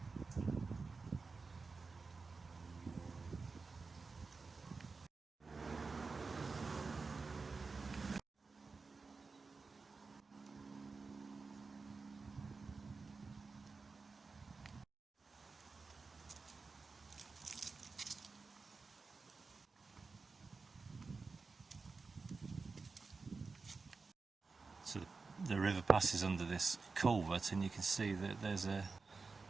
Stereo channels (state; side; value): quieter; left; 4.3 dB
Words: So the river passes under this culvert, and you can see that there's